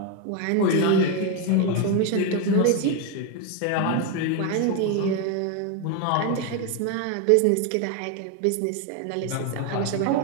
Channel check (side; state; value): both; different; correlation 0.02